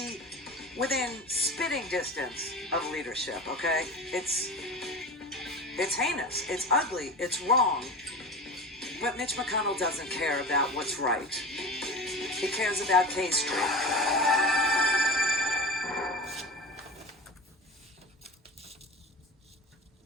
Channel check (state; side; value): normal; both; correlation 0.31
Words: within spitting distance of leadership, okay? It's heinous, it's ugly, it's wrong. But Mitch McConnell doesn't care about what's right. He cares about K Street.